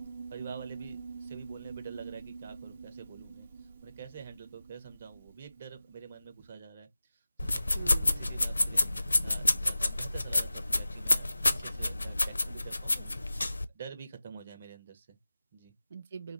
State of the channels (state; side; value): inverted; both; correlation -0.95